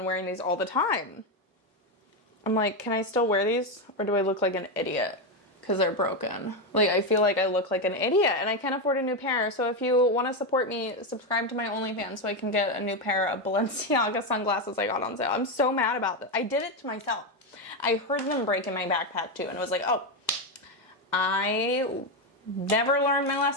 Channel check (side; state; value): both; normal; correlation 0.09